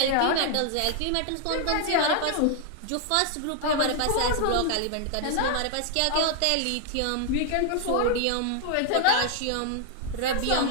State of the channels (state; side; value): different; both; correlation 0.00